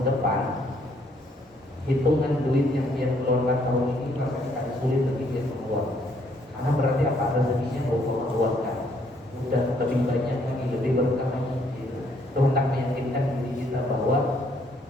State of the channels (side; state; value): both; normal; correlation 0.68